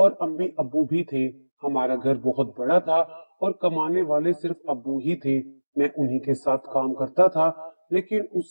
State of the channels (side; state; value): both; inverted; correlation -1.00